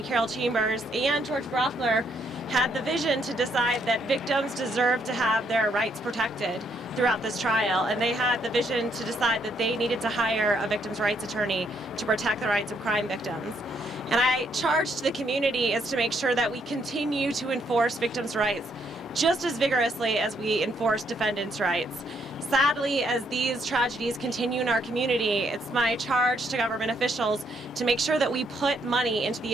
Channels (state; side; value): normal; both; correlation 0.72